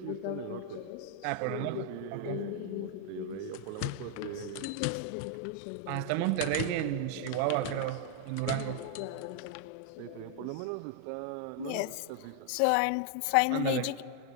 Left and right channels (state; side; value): different; both; correlation 0.00